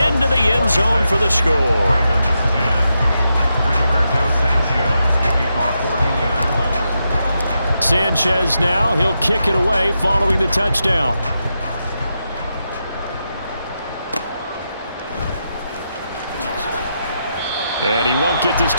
the end zone for the score. Sanchez now, he'll kick it away following the touchdown. And he won't get this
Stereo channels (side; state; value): both; inverted; correlation -0.85